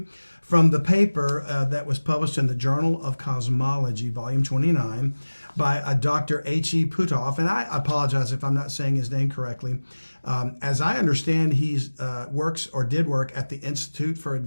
from the paper that was published in the Journal of Cosmology, volume 29, by Dr. H.E. Puthoff. And I apologize if I'm not saying his name correctly. As I understand, he did work at the Institute for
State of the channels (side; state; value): both; inverted; correlation -1.00